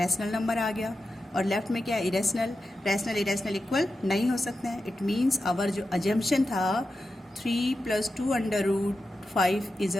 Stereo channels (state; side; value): normal; both; correlation 0.90